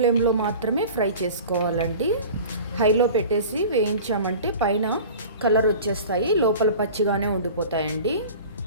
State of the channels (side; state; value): both; inverted; correlation -0.39